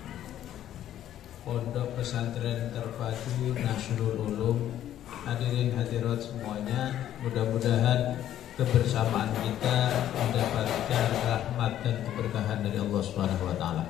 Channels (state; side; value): quieter; right; 11.6 dB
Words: pondok pesantren terpadu Nasrul Ulum, hadirin hadirat semuanya, mudah-mudahan kebersamaan kita mendapatkan rahmat dan keberkahan dari Allah Subhanahu wa taala.